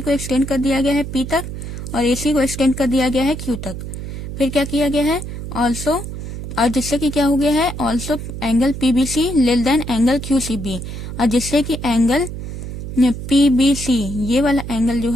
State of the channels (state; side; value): noise; right; hum, 8 dB below the sound